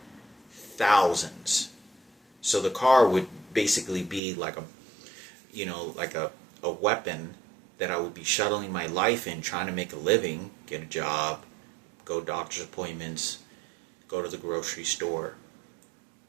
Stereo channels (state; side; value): drops out; left; at 4.2 s